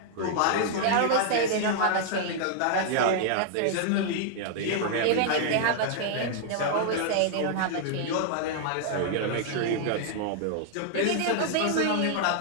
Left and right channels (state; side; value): different; both; correlation 0.00